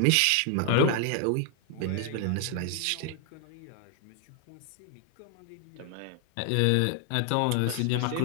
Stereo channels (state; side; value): different; both; correlation 0.00